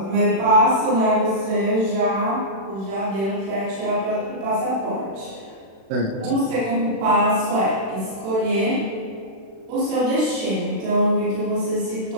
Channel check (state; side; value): late; left; 36 ms